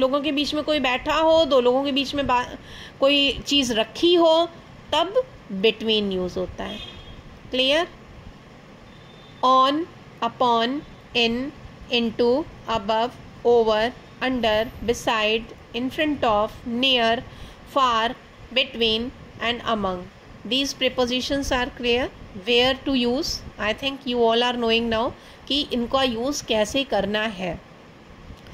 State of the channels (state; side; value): identical; both; correlation 1.00